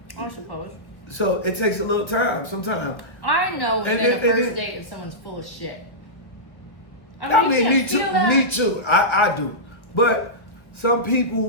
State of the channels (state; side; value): late; right; 1.5 ms